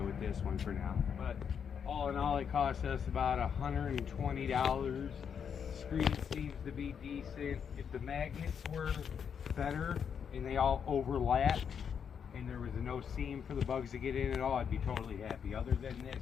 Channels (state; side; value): quieter; right; 7.3 dB